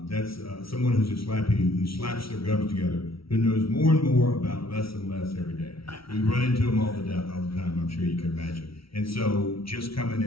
that's someone who's a slappy who slaps their gums together, who knows more and more about less and less every day. We run into them all the time, I'm sure you can imagine. And so just coming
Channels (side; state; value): right; late; 0.75 ms